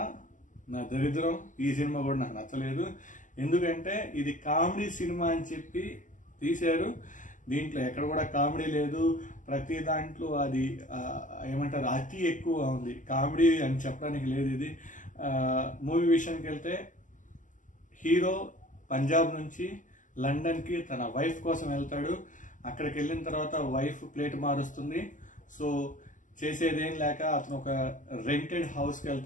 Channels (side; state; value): right; late; 0.37 ms